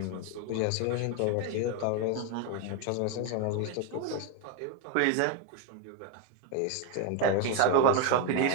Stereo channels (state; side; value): different; both; correlation 0.01